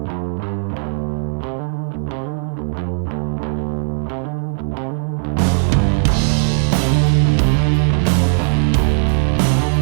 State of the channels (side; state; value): left; silent; 60 dB below the other